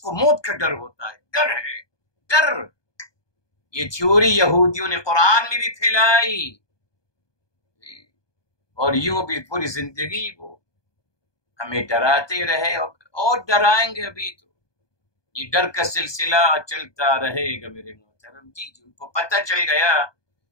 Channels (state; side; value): late; right; 1.2 ms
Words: موت کا ڈر ہوتا ہے. ڈر ہے، ڈر. یہ تھیوری یہودیوں نے قرآن میں بھی پھیلائی اور یوں بھی پوری زندگی وہ ہمیں ڈراتے رہے اور ڈرائیں گے. ابھی تو یہ ڈر کا سلسلہ چلتا رہے گا میرے محترم. جی ان کو پتہ چل گیا